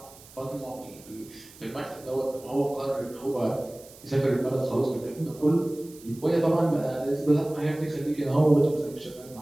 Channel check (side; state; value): right; noise; hiss, 21 dB below the sound